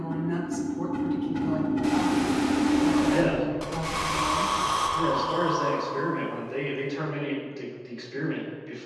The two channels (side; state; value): both; identical; correlation 1.00